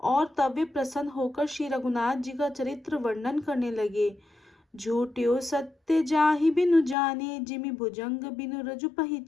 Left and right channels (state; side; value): drops out; right; at 7.0 s